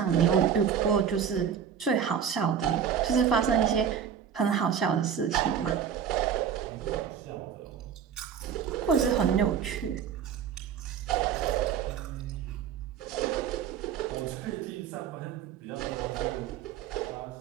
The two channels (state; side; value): quieter; left; 8.0 dB